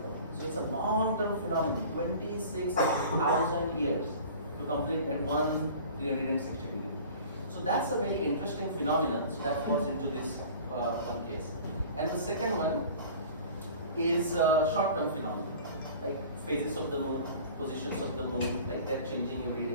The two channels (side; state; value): both; inverted; correlation -0.43